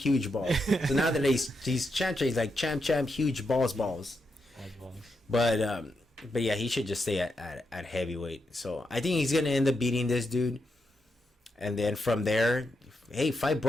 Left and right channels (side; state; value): both; normal; correlation 0.84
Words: huge balls." So now that he's champ, he's like champ, huge balls. But yeah, he should just stay at heavyweight. So I think he's gonna end up beating this dude, and then from there, hey, fight